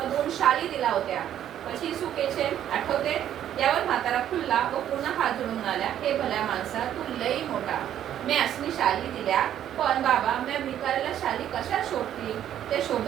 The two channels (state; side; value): quieter; left; 10.8 dB